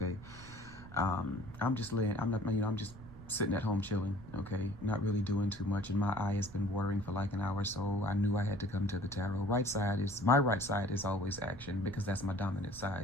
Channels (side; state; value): right; noise; rumble, 17 dB below the sound